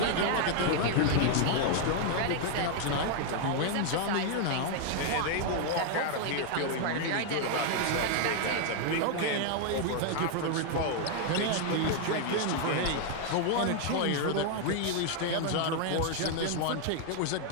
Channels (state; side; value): different; both; correlation 0.00